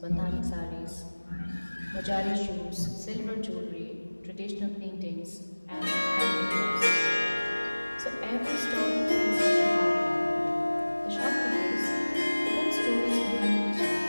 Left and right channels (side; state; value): both; inverted; correlation -1.00